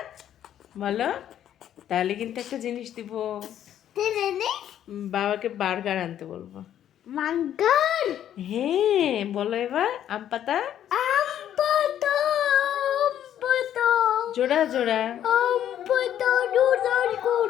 বলো। তাহলে কিন্তু একটা জিনিস দিব, বাবাকে বার্গার আনতে বলবো। মাঙ্গার হ্যাঁ বলো এবার, আম পাতা, আমপাতা আমপাতা জোড়া জোড়া, আমপাতা দুধর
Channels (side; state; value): right; quieter; 10.7 dB